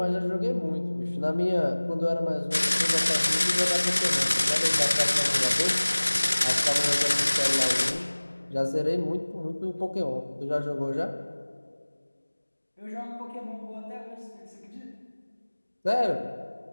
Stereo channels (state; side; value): inverted; both; correlation -1.00